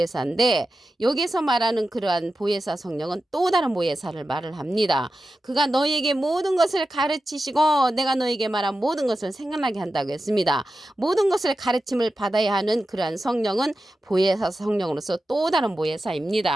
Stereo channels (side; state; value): both; normal; correlation 0.92